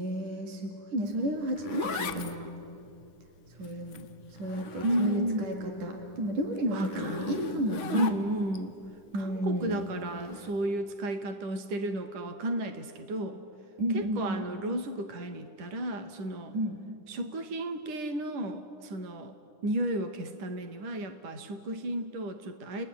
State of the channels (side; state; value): left; late; 10 ms